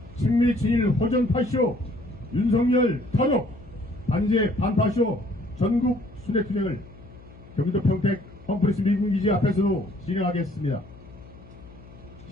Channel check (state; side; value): noise; left; hum, 20 dB below the sound